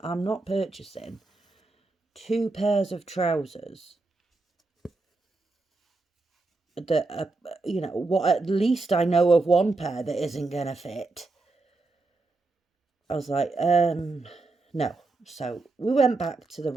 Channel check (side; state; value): left; quieter; 3.4 dB